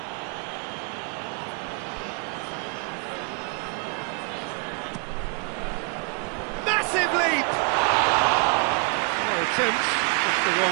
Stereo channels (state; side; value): quieter; left; 34.2 dB